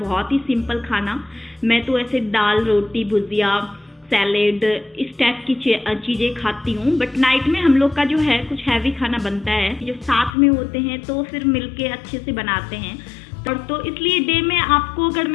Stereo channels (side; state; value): right; drops out; at 10.3 s